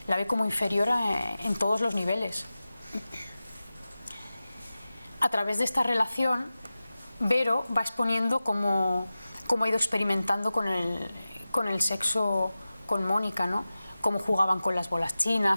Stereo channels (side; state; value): both; inverted; correlation -0.96